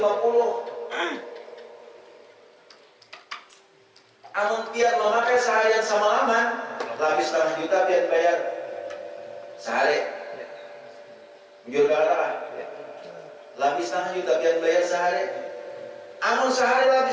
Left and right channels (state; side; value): identical; both; correlation 1.00